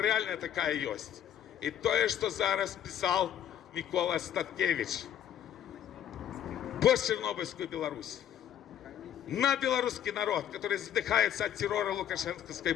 такая есть. И то, что зараз писал Микола Статкевич. Постчернобыльскую Беларусь. На белорусский народ, который задыхается от террора лукашенковской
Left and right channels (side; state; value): right; quieter; 10.4 dB